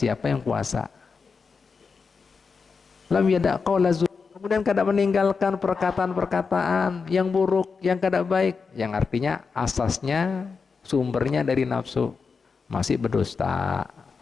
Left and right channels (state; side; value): quieter; right; 5.1 dB